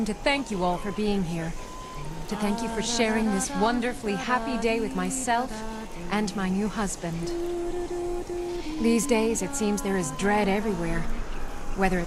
to thank you all for being here. To thank you for sharing this wonderfully happy day with myself and my new husband. These days, it seems there is dread everywhere, whether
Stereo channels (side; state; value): both; identical; correlation 1.00